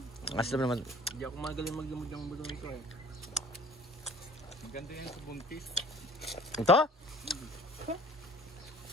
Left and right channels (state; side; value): normal; both; correlation 0.50